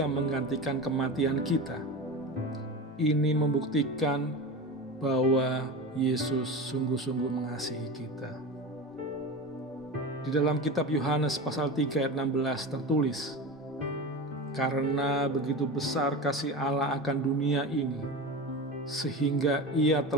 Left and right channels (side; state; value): both; normal; correlation 0.27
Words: menggantikan kematian kita. Ini membuktikan bahwa Yesus sungguh-sungguh mengasihi kita. Di dalam kitab Yohanes pasal 3 ayat 16 tertulis, karena begitu besar kasih Allah akan dunia ini, sehingga Ia